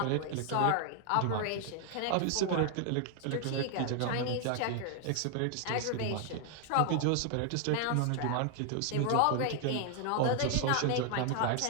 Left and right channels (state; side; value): different; both; correlation 0.00